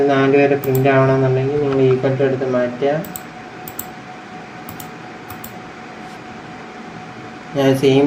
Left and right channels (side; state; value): both; identical; correlation 1.00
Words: 4 വരെ പ്രിൻ്റ് ആവണമെന്നുണ്ടെങ്കിൽ നിങ്ങൾ ഈക്വൽ ടു എടുത്ത് മാറ്റുക. ഞാൻ സെയിം